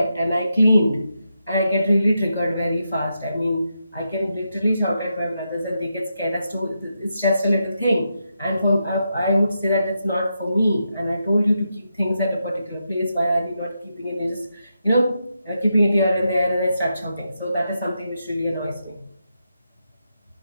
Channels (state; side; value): inverted; both; correlation -0.84